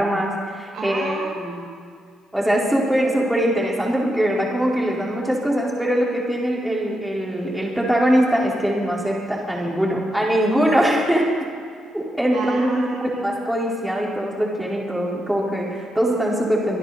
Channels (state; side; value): normal; both; correlation 0.85